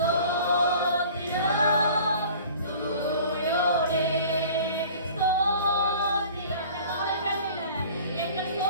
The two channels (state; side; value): inverted; both; correlation -0.46